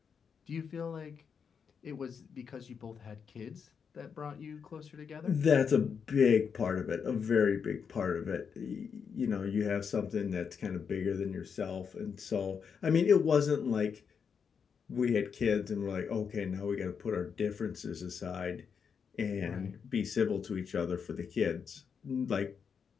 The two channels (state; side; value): quieter; right; 6.5 dB